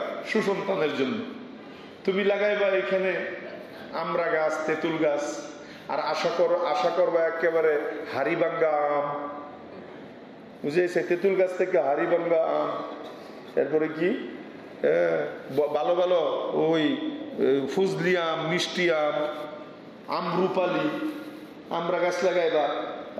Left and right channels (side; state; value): both; identical; correlation 1.00